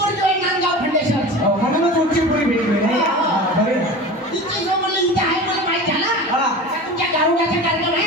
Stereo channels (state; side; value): normal; both; correlation 0.33